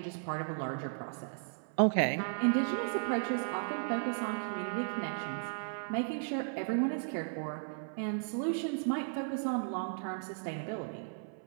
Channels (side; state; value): left; silent; 54 dB below the other